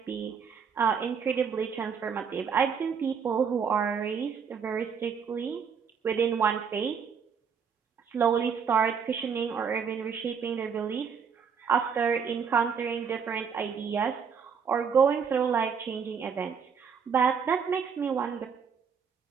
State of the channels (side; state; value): left; quieter; 6.5 dB